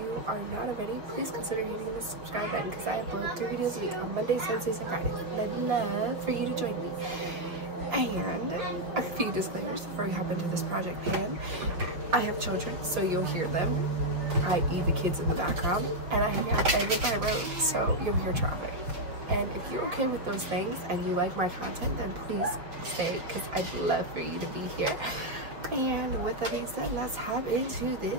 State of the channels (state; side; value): late; left; 5.7 ms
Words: are not already, please consider hitting the subscribe button because I upload 3 videos a week on Mondays, Wednesdays, and Fridays. I'd love for you to join me. And a few disclaimers before we hop into this project pan. I have children, so you'll hear them, i.e. the kids in the background, and I hang out over by road, so you'll hear traffic. And if you're okay with those things and you like my content, then please stay because I'd love for you to be here. And with that being said, let's hop into